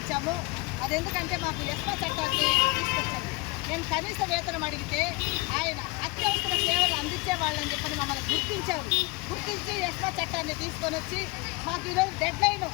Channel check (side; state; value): right; quieter; 25.2 dB